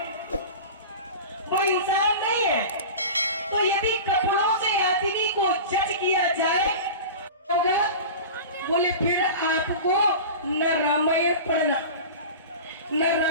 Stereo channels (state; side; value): inverted; both; correlation -0.32